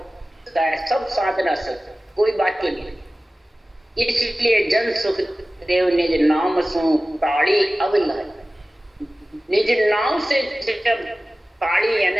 सब साधना से कोई बात ही नहीं। इसलिए जन सुख देव निज नाम सु ताड़ी अविलय, निज नाम से जब ताड़ी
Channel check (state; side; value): normal; both; correlation 0.97